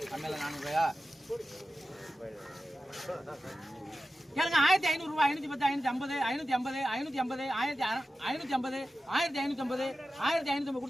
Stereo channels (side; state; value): both; normal; correlation 0.93